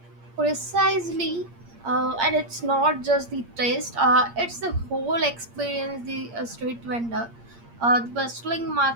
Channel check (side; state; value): left; late; 8.6 ms